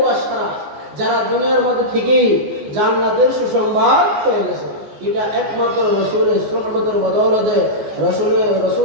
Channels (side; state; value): left; late; 14 ms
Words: যারা দুনিয়ার মধ্যে থেকেই জান্নাতের সুসংবাদ পেয়ে গেছে, এটা একমাত্র রাসূলের সোহবতের বদৌলতে,